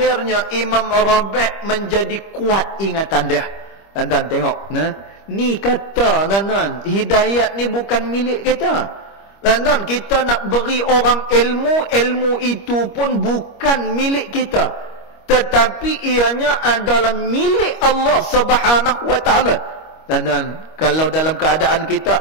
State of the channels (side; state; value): right; late; 25 ms